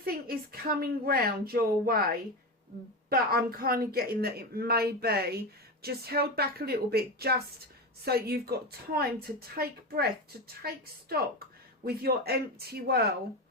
is coming round your way, but I'm kind of getting that it may be just held back a little bit, just so you've got time to take breath, to take stock with your empty well,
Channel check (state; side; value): normal; both; correlation 0.19